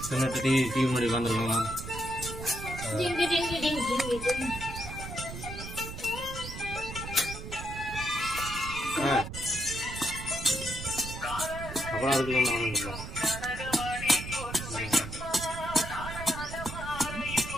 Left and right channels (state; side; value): noise; right; rumble, 9 dB below the sound